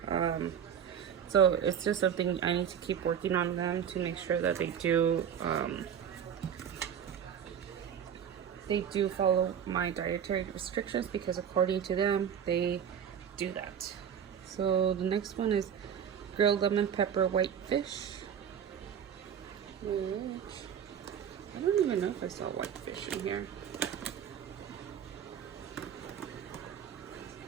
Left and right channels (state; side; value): quieter; left; 8.5 dB